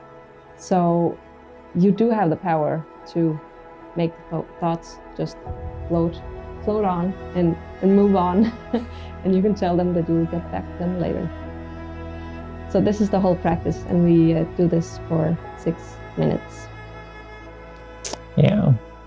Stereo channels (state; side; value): identical; both; correlation 1.00